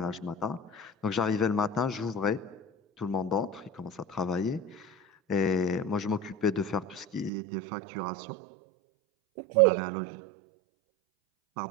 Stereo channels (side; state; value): left; drops out; at 7.3 s